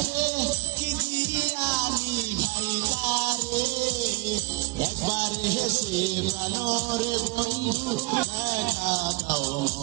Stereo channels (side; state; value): left; quieter; 23.4 dB